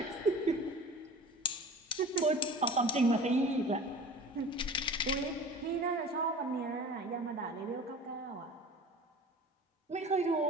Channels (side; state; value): both; normal; correlation 0.39